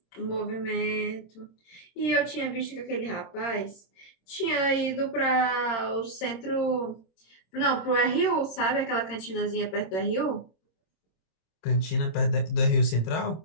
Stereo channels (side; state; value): right; late; 26 ms